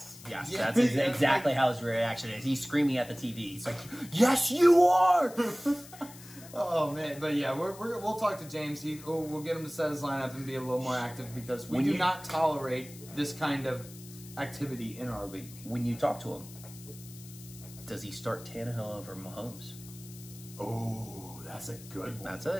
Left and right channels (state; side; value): noise; left; hiss, 18 dB below the sound